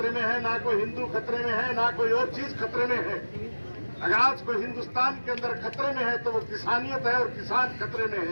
में है, ना कोई हिंदू खतरे में है, ना कोई और चीज खतरे में है। अगर आज कोई हिंदुस्तान के अंदर खतरे में है तो वो किसानियत है और किसान खतरे में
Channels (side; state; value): both; inverted; correlation -1.00